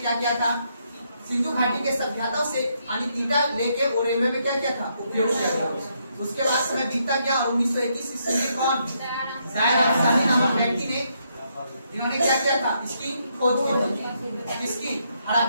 किया था, सिंधु घाटी के सभ्यता से ईटा लेके वो रेलवे में क्या किया था, उपयोग किया था। उसके बाद समय बीतता गया और 1921 ईस्वी में कौन जायर अफसानी नामक व्यक्ति ने इन्होंने क्या किया था, इसकी खोज की। इसकी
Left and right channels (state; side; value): inverted; both; correlation -0.76